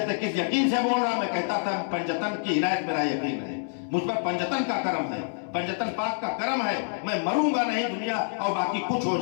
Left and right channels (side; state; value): right; silent; 60 dB below the other